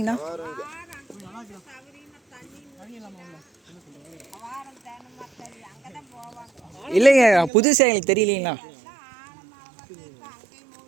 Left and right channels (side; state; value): left; drops out; at 7.5 s